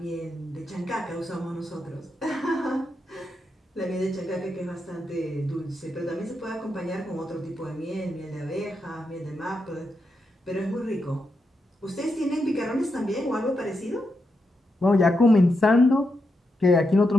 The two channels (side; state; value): both; normal; correlation 0.85